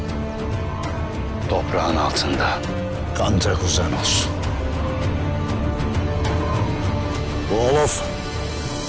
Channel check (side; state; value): both; identical; correlation 1.00